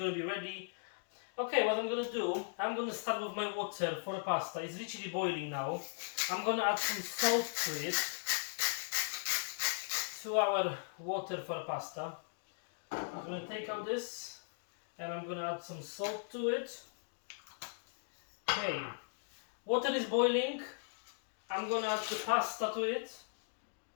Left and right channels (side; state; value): right; silent; digital silence